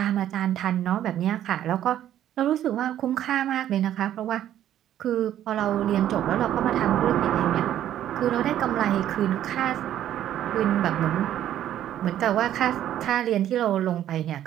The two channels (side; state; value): left; quieter; 11.5 dB